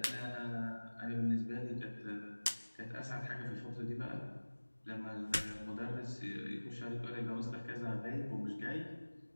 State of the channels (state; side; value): inverted; both; correlation -1.00